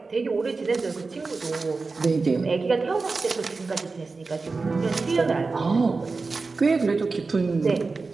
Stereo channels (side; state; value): left; quieter; 4.1 dB